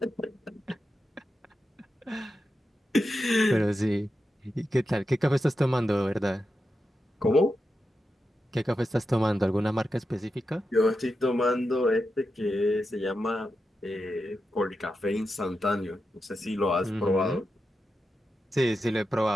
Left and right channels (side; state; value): both; normal; correlation 0.89